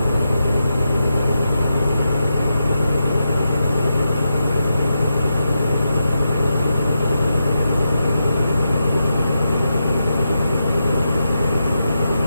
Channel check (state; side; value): inverted; both; correlation -0.87